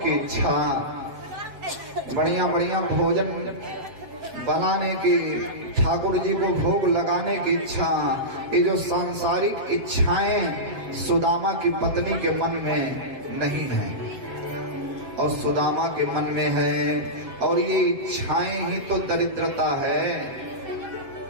इच्छा, बढ़िया बढ़िया भोजन बनाने की, ठाकुर जी को भोग लगाने की इच्छा। ये जो सांसारिक इच्छाएं सुदामा की पत्नी के मन में नहीं है और सुदामा के मन में है। और ये इच्छाएं ही तो दरिद्रता है।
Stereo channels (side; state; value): left; late; 7.6 ms